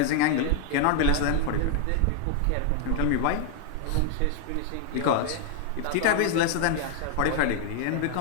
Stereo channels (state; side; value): different; both; correlation 0.00